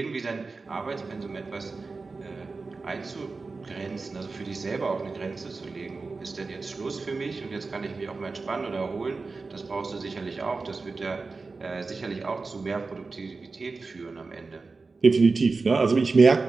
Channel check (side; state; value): left; quieter; 4.0 dB